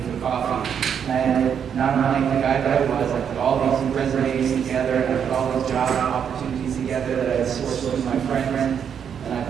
for coffee. And I had, not unlike the guy that I was, I put all these resumes together, and I put all these job opportunities together that I had sourced through my friends. And I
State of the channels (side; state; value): left; quieter; 7.9 dB